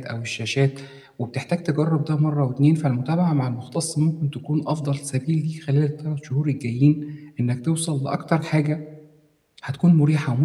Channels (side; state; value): both; identical; correlation 1.00